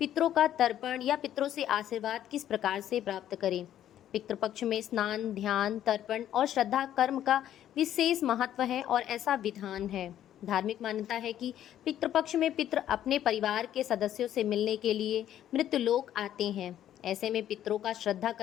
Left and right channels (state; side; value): quieter; right; 11.3 dB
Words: का तर्पण या पितरों से आशीर्वाद किस प्रकार से प्राप्त करें। पितृपक्ष में स्नान, ध्यान, तर्पण और श्रद्धा कर्म का विशेष महत्व है और ऐसा विधान है। धार्मिक मान्यता है कि पितृपक्ष में पितृ अपने परिवार के सदस्यों से मिलने के लिए मृत्युलोक आते हैं। ऐसे में पितरों का श्रद्धा